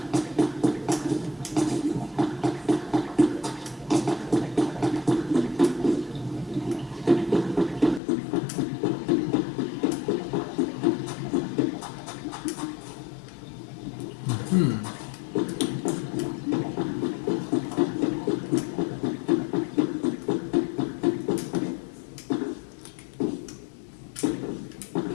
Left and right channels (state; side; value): drops out; right; at 8.0 s